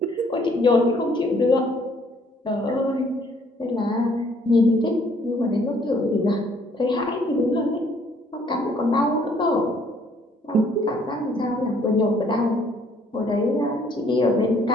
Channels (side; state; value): both; normal; correlation 0.63